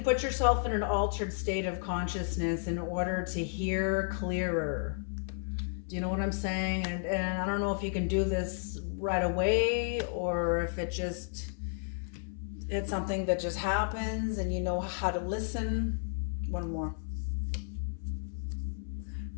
put yourself in an altered state of consciousness in order to hear clearer. Do you know what I'm saying? And I don't know if you can do this right away, or if it's something that just happens and you know how to listen. One more.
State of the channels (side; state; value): right; silent; 56 dB below the other